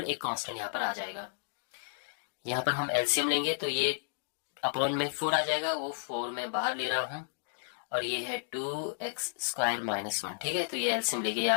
एक कांस्टेंट यहाँ पर आ जाएगा। यहाँ पर हम एलसीएम लेंगे तो ये अपॉन में 4 आ जाएगा, वो 4 में बाहर ले रहा हूं, और ये है 2x स्क्वायर माइनस 1। ठीक है, तो ये एलसीएम लेके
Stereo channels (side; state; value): right; silent; digital silence